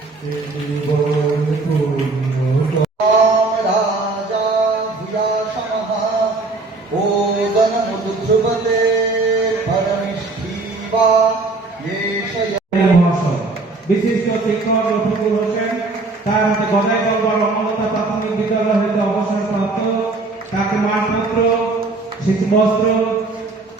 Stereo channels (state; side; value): quieter; left; 3.5 dB